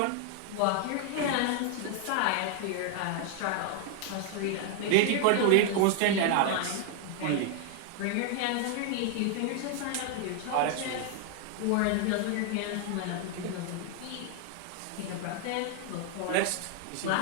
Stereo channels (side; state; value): both; different; correlation 0.00